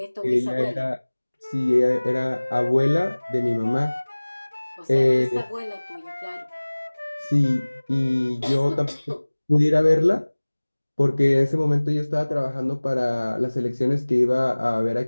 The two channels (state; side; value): inverted; both; correlation -1.00